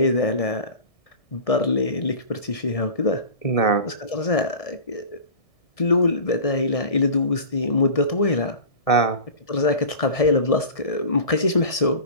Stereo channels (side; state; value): right; late; 1.7 ms